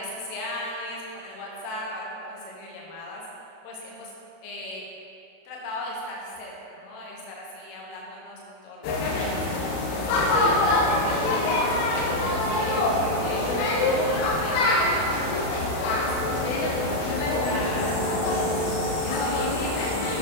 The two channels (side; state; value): right; late; 32 ms